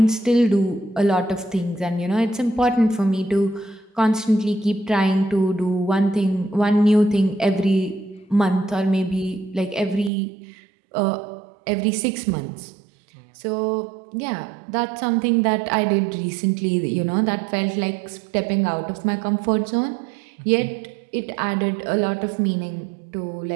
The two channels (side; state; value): left; drops out; at 10.1 s